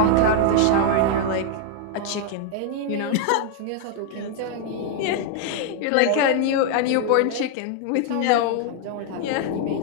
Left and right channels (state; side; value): different; both; correlation 0.00